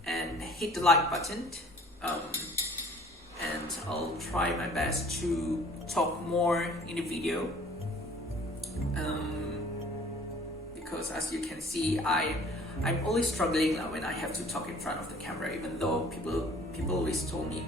and hit the like button. And I'll try my best to talk more in the video. Because as you can see, I'm always struggling when I have to talk in front of the camera, even though people always told me,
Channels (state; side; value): normal; both; correlation 0.52